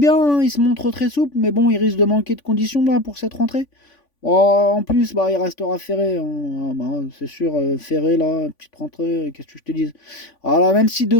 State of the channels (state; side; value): late; right; 3.5 ms